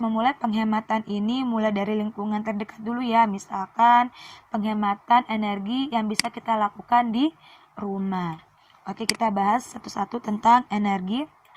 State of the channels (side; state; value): both; identical; correlation 1.00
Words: penghematan ini mulai dari lingkungan terdekat dulu ya. Misalkan penghematan energi yang bisa kita lakukan di rumah. Oke, kita bahas satu-satu tentang energi.